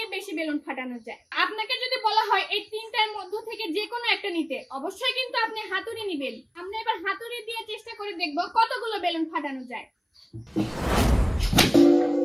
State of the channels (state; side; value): identical; both; correlation 1.00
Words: বেশি বেলুন ফাটানো যায়। আপনাকে যদি বলা হয় এই তিনটার মধ্যে থেকে যে কোনো একটা নিতে, অবশ্যই কিন্তু আপনি হাতুড়ি নেবেন। আমরা এবার হাতুড়ি দিয়ে চেষ্টা করে দেখবো কতগুলো বেলুন ফাটানো যায়।